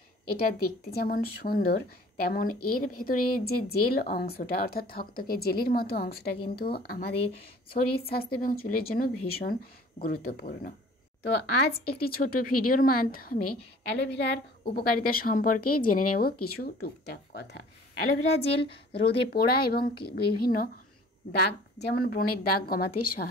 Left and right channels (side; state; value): both; normal; correlation 0.50